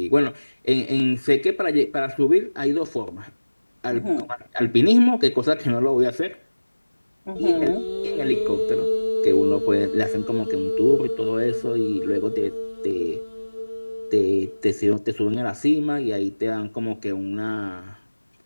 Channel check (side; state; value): both; inverted; correlation -1.00